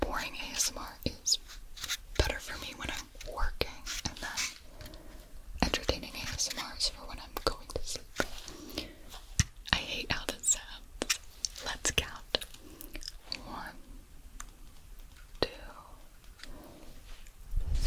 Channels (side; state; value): both; identical; correlation 1.00